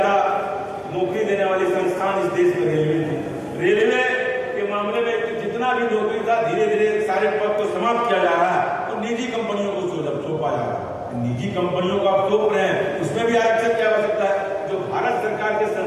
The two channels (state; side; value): identical; both; correlation 1.00